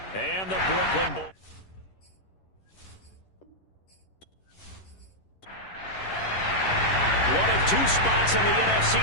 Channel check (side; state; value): right; late; 11 ms